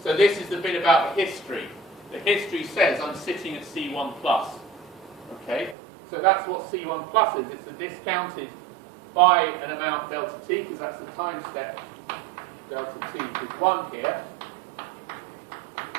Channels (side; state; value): left; drops out; at 5.8 s